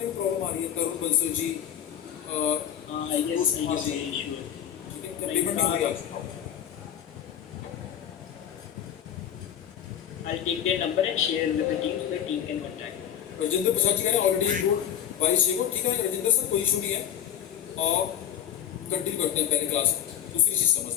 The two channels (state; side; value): quieter; right; 9.9 dB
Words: में प्रॉब्लम आ रही है? तरुण बंसल जी, ठीक है, पेमेंट नहीं हो रहा। I'll take their number and share with the team so the team can contact. Rajendra Prasad ji का ऑलरेडी इंक्लूड 22 को। ठीक है राजेंद्र सर, कोई इशू नहीं है, और कंटिन्यू करते हैं पहले क्लास। दूसरी चीज़